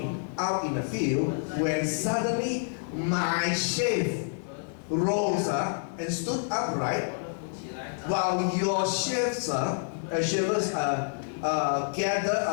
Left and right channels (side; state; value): right; silent; digital silence